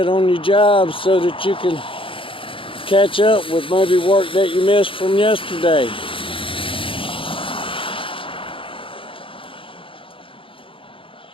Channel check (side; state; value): right; late; 0.25 ms